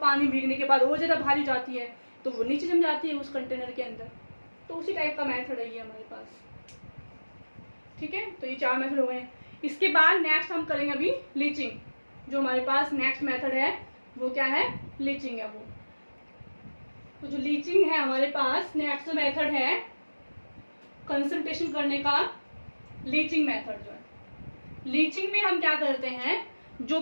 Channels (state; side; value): inverted; both; correlation -1.00